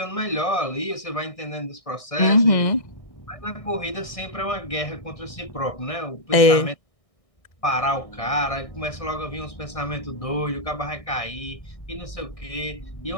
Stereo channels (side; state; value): right; late; 1.6 ms